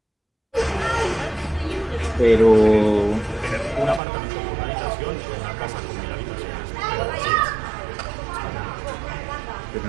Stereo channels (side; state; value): left; drops out; at 4.0 s